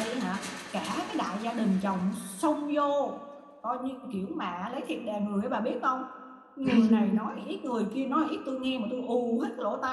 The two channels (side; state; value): both; identical; correlation 1.00